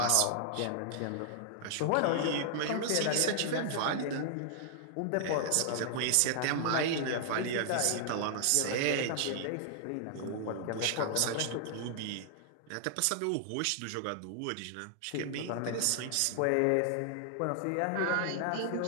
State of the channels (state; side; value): different; both; correlation 0.00